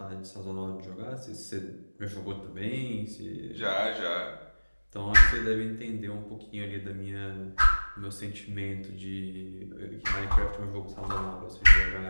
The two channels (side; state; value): both; inverted; correlation -1.00